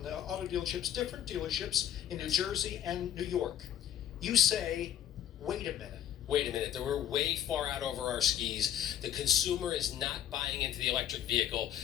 auto dealerships, different dealerships in New Jersey and New York. You say, wait a minute. Wait a minute, we're way far out over our skis. The consumer is not buying into the electric vehicle.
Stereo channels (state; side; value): quieter; right; 10.5 dB